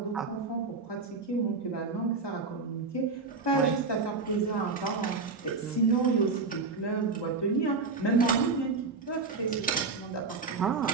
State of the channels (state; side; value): quieter; left; 4.3 dB